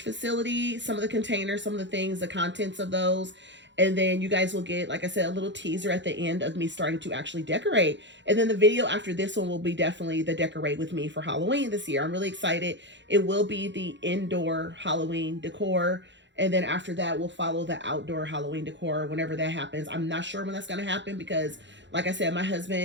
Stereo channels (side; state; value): left; late; 0.53 ms